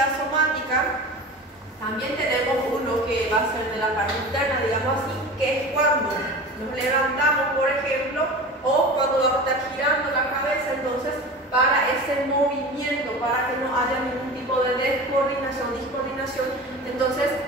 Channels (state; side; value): normal; both; correlation 0.34